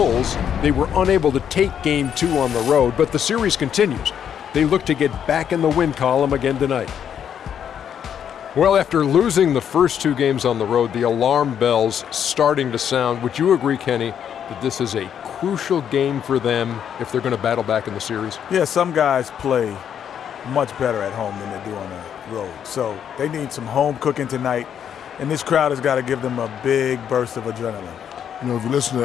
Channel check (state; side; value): quieter; right; 8.8 dB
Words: they were unable to take Game 2 on the road, but the series continues. They look to get back in the win column again tonight. Well, after losing the first two games on the road, the alarm bells starting to sound. Would you agree, Kenny, that this is a crucial game for them if they're going to battle back in the series? Yeah, some guys play much better at home than they do on the road. So they need some home cooking tonight, and this crowd has got to give them a big burst of adrenaline. You know, if you listen to